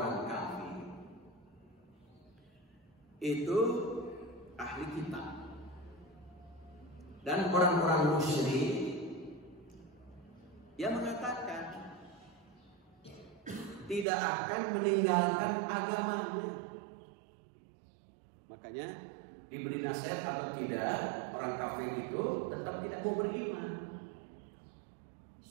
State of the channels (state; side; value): drops out; left; at 14.1 s